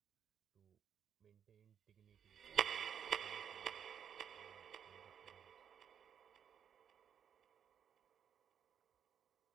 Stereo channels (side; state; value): left; quieter; 8.1 dB